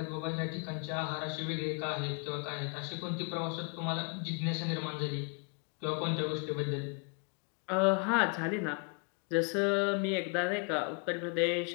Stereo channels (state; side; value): quieter; right; 37.7 dB